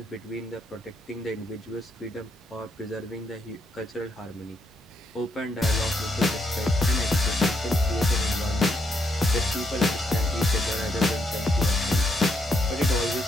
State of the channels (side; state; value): both; normal; correlation 0.77